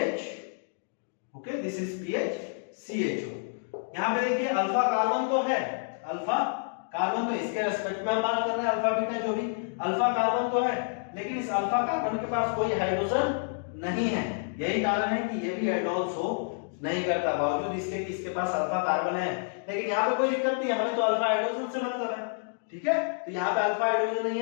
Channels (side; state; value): right; silent; digital silence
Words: Okay, this is PHCHO। यहां पे देखिए अल्फा कार्बन तो है, अल्फा कार्बन तो इसके रेस्पेक्ट में हम बात कर रहे हैं, अल्फा बीटा जो भी, अल्फा कार्बन तो है लेकिन इस अल्फा कार्बन के पास कोई हाइड्रोजन नहीं है। यही कारण है कि ये भी एल्डोल शो नहीं करता, बावजूद इसके कि इसके पास अल्फा कार्बन है। लेकिन यहाँ पे कोई दिक्कत नहीं है, हमें तो अल्फा हाइड्रोजन से मतलब है। ठीक है, तो यहाँ पे अल्फा हाइड्रोजन नहीं